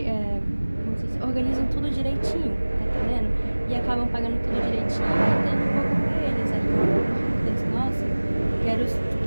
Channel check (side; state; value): both; inverted; correlation -1.00